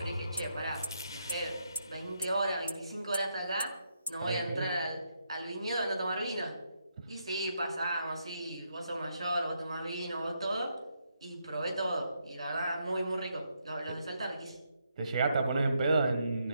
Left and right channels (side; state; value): both; inverted; correlation -0.78